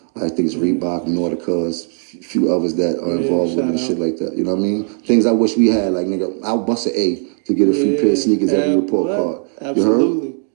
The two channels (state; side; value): silent; left; 58 dB below the other